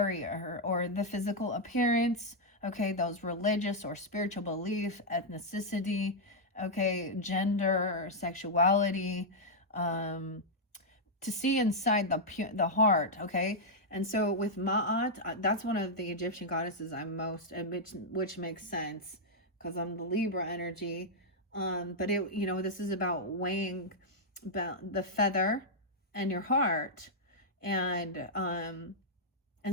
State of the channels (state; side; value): normal; both; correlation -0.05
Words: or the physical appearance, okay, those religious or spiritual belief, ethnicity, okay, gender, sexuality, to see inside the heart, okay. And so with Ma'at, that's one of the Egyptian goddesses I'm most, which makes sense because I'm the Libra energy. But it, this is about weighing about the feather and your heart. And